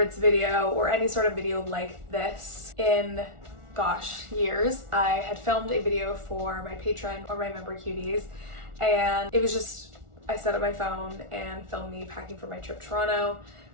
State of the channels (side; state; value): left; late; 1.4 ms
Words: video or any sort of video like this in, gosh, years. I had filmed a video for my patron or my member cuties, and it was just, I set up my phone and filmed me packing for my trip to Toronto,